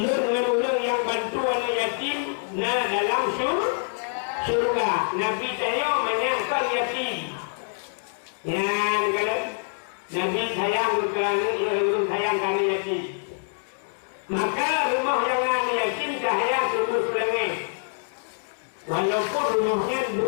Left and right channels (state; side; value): silent; right; digital silence